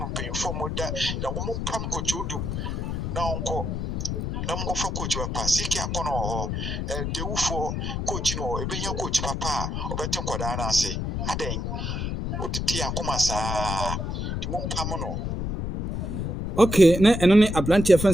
pay for moda na ọmọ pam coach odum na onko na mo fa coach papa siki akono ho dewu for coach no ebenya coach papa obetin kwada na ase aden otiti akoma saa di mo pam no. Okay, na ɛno ne aberanteɛ fɛn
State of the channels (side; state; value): left; noise; rumble, 2 dB below the sound